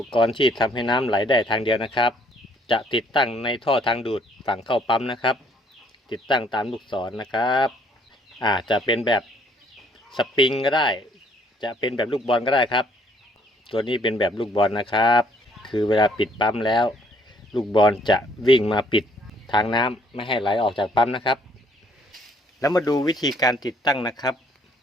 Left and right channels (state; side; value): normal; both; correlation 0.64